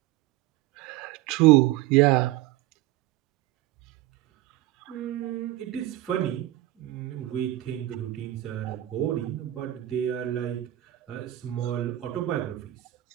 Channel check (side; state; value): left; quieter; 15.3 dB